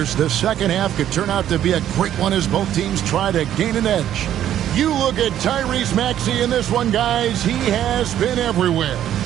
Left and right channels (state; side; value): quieter; left; 11.2 dB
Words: the second half could turn out to be a great one as both teams try to gain an edge. You look at Tyrese Maxey in this one, guys. He has been everywhere.